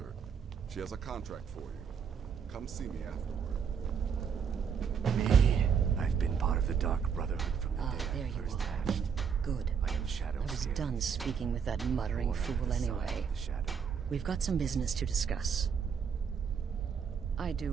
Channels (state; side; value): quieter; left; 6.8 dB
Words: She has a contract for you. Come see me afterward. Me. I've been part of the Dark Brotherhood from the day there I you first are. hatched. Good. I am Shadow I was Scale. done speaking with that muttering Born under fool the sign anyway. of the Shadow. We've got some business to discuss. I